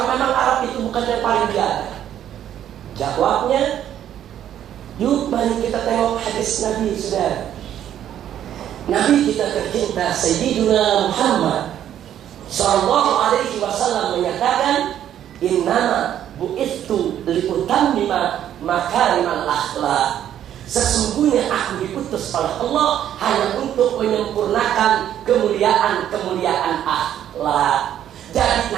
memang Arab itu bukan yang paling biada. Jawabnya, yuk mari kita tengok hadis Nabi, saudara. Nabi kita tercinta Sayyidina Muhammad Sallallahu Alaihi Wasallam menyatakan, "Innama bu'ithu liutammima makarimal akhlak." Sesungguhnya aku diutus oleh Allah hanya untuk menyempurnakan kemuliaan-kemuliaan akhlak. Jadi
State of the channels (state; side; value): quieter; left; 10.7 dB